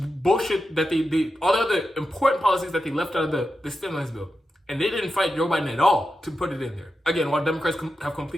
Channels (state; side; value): normal; both; correlation 0.89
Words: that all the other important policies that they left out of the stimulus bill. And they didn't fight Joe Biden at all to put it in there. Again, while Democrats have